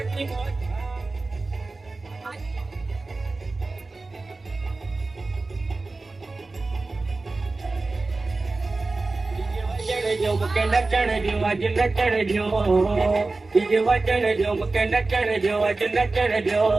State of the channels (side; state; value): left; quieter; 3.5 dB